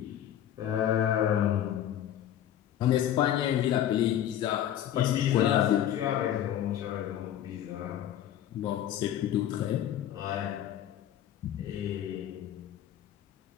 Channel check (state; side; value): quieter; right; 11.1 dB